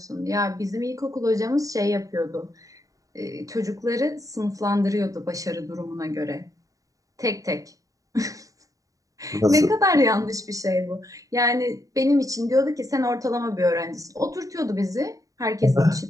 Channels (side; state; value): left; late; 0.16 ms